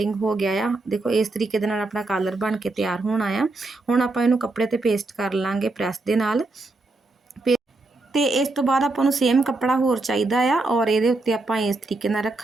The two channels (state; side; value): quieter; left; 3.2 dB